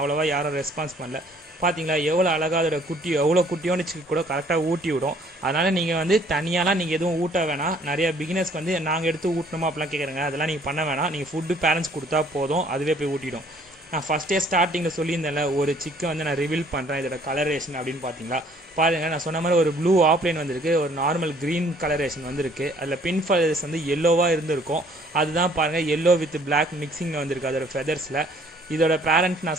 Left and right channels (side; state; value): both; normal; correlation 0.59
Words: யாரும் ரெஸ்பான்ஸ் பண்ணல. பார்த்தீங்களா எவ்வளோ அழகாக அதோட குட்டி, எவ்வளோ குட்டியோன்னு சிக்கு கூட கரெக்டாக ஊட்டி விடும். அதனால் நீங்கள் வந்து தனியாலாம் நீங்கள் எதுவும் ஊட்ட வேணாம். நிறைய பிகினர்ஸ்க்கு வந்து நாங்கள் எடுத்து ஊட்டணுமா அப்படிலாம் கேட்குறேங்க, அதெல்லாம் நீங்கள் பண்ண வேணாம். நீங்கள் ஃபுட்டு பேரண்ட்ஸ் கொடுத்தா போதும், அதுவே போய் ஊட்டிடும். நான் ஃபஸ்ட்டே ஸ்டார்டிங்கில் சொல்லியிருந்தேன்ல, ஒரு சிக்கை வந்து நான் ரிவீல் பண்ணுறேன் இதோட கலரேஷன் அப்படின்னு பார்த்தீங்களா. பாருங்கள், நான் சொன்ன மாதிரி ஒரு ப்ளூ ஆப்லைன் வந்திருக்கு, ஒரு நார்மல் க்ரீன் கலரேஷன் வந்திருக்கு. அதில் பின் ஃபெதர்ஸ் வந்து எல்லோவாக இருந்திருக்கும், அதுதான் பாருங்கள் எல்லோ வித் பிளாக் மிக்சிங்கில் வந்திருக்கு அதோட ஃபெதர்ஸில். இதோட பேரண்ட்